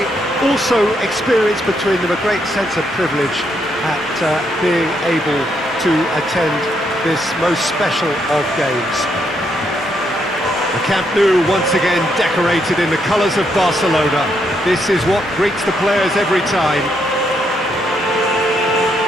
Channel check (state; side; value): normal; both; correlation 0.76